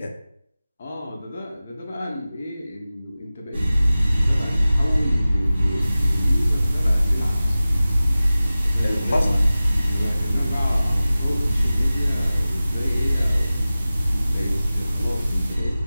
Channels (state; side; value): inverted; both; correlation -0.96